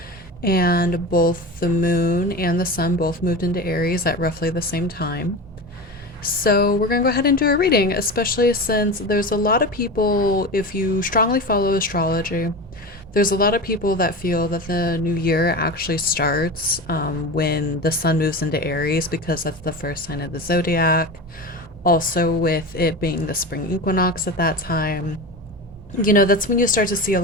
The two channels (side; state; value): both; normal; correlation 0.26